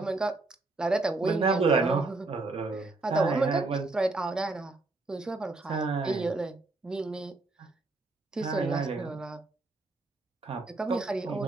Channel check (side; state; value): left; quieter; 3.3 dB